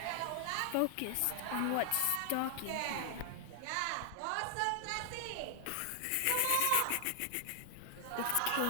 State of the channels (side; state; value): both; different; correlation 0.00